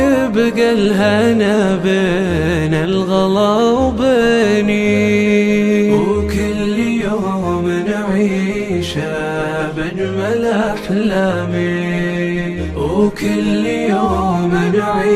يبقى الهنا بين الغلا وبيني، وكل يوم نعيشه بأجمل أحلامي، وكل يوم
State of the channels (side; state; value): both; identical; correlation 1.00